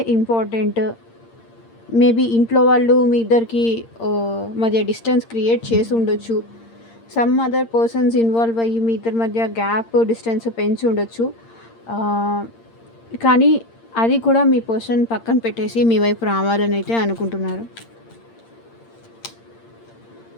ఇంపార్టెంట్. మేబీ ఇంట్లో వాళ్ళు మీ ఇద్దరికి మధ్య డిస్టెన్స్ క్రియేట్ చేసి ఉండొచ్చు. సమ్ అదర్ పర్సన్స్ ఇన్వాల్వ్ అయ్యి మీ ఇద్దరి మధ్య గ్యాప్, డిస్టెన్స్ పెంచి ఉండొచ్చు. కానీ అది కూడా మీ పర్సన్ పక్కన పెట్టేసి మీ వైపు రావాలని అయితే అనుకుంటున్నారు.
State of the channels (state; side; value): late; right; 8.7 ms